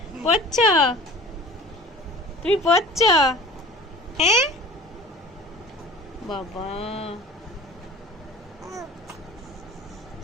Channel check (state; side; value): normal; both; correlation 0.42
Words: পড়ছ, তুমি পড়ছ? হ্যাঁ বাবা,